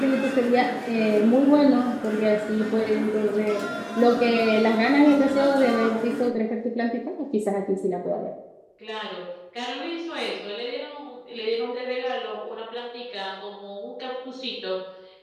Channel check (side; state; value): both; identical; correlation 1.00